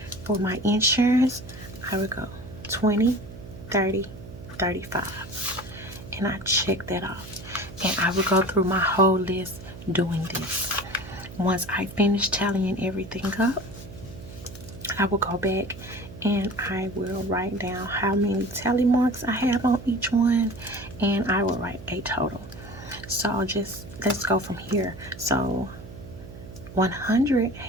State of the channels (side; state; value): right; noise; hum, 15 dB below the sound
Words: For my insurance, I would go 20, 30, 35. And I check that off. And I would go through my whole list doing this. Once I finish tallying everything up, I will go back and I will write down how many tally marks I have on each one, and I will write a total. So let's go from here. So 100